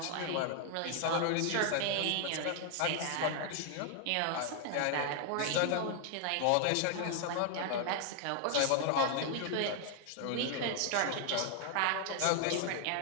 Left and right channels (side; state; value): both; different; correlation 0.00